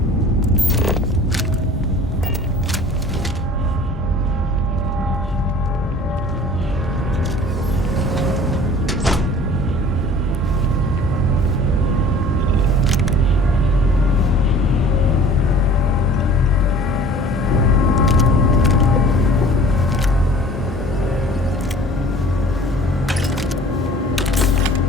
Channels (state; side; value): normal; both; correlation 0.46